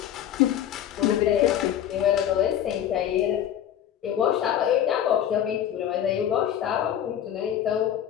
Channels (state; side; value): quieter; right; 10.4 dB